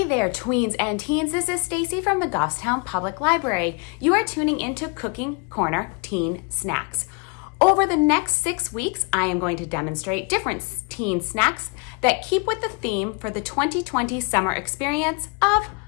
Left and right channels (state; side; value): quieter; right; 33.9 dB